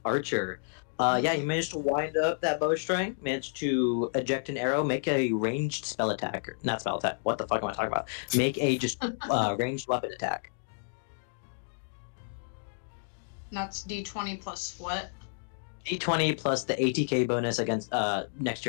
Archer. Yeah, you managed to wind up that bowstring, managed to eject an arrow, make a ranged spell attack. Not spell attack. What the fuck am I talking about? Make a just ranged weapon attack. That's D20 plus what? D20 plus the ATK bonus against next to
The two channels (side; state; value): right; silent; digital silence